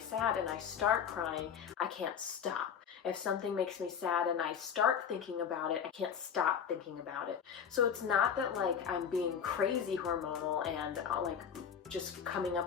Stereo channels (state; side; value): quieter; right; 7.6 dB